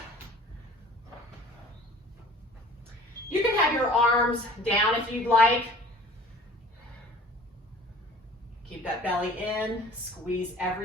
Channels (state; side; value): normal; both; correlation 0.48